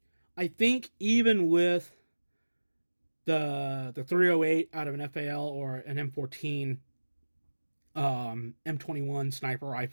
I think even with the 308 out of an FAL or an M14, M21 sniper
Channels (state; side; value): inverted; both; correlation -1.00